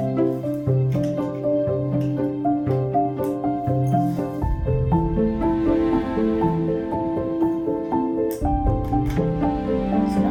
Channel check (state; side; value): identical; both; correlation 1.00